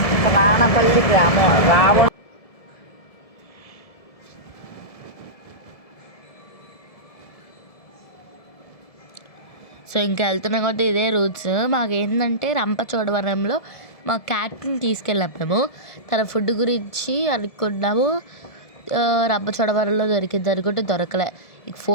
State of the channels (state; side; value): late; right; 1.7 ms